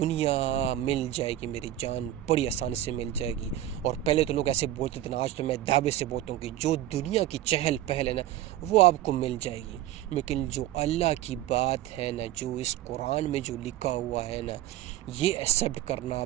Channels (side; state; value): left; quieter; 13.5 dB